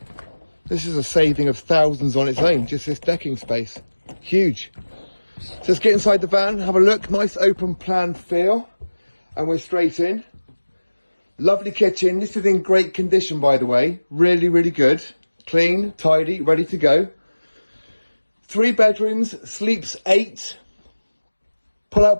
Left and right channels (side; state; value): both; inverted; correlation -1.00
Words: This is a saving of thousands on its own, just this decking space. Huge. So let's get inside the van, have a look. Nice open plan feel. And we're straight in. Lovely kitchen. This is in great condition, by the way. Really, really good. Clean, tidy, ready to go. 3 bedrooms, sleeps 8. Pull